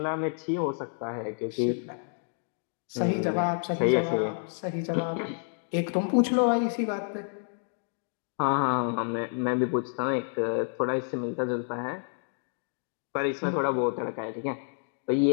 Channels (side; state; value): right; silent; 58 dB below the other